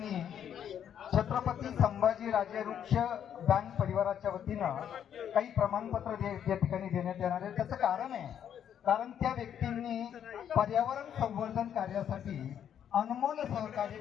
छत्रपती संभाजी राजे वृक्ष बँक परिवाराच्या वतीनं काही प्रमाणपत्र या ठिकाणी देण्यात येणार आहे. त्याचं कारण आहे, कारण त्या व्यक्तींनी पर्यावरण संवर्धन कार्यासाठी अनमोल सहकार्य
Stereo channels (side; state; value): right; quieter; 9.2 dB